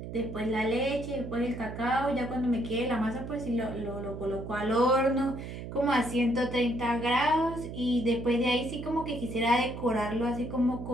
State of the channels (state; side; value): noise; right; hum, 9 dB below the sound